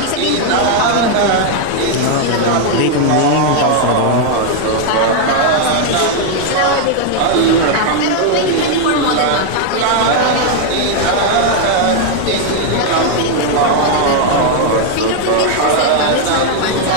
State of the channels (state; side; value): different; both; correlation 0.00